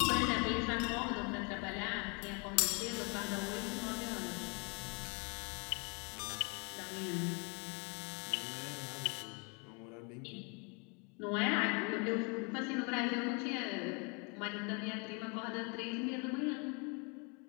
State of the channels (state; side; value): quieter; right; 33.8 dB